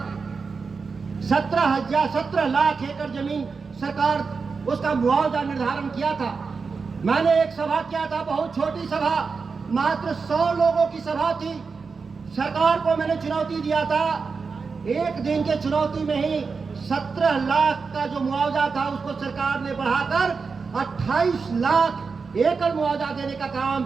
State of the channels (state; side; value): quieter; left; 4.9 dB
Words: 17 लाख एकड़ जमीन सरकार उसका मुआवजा निर्धारण किया था। मैंने एक सभा किया था, बहुत छोटी सभा, मात्र 100 लोगों की सभा थी। सरकार को मैंने चुनौती दिया था, 1 दिन के चुनौती में ही 17 लाख का जो मुआवजा था उसको सरकार ने बढ़ाकर 28 लाख एकड़ मुआवजा देने का काम